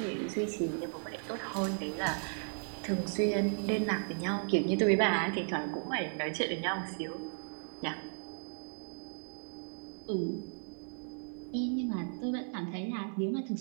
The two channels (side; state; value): left; silent; 54 dB below the other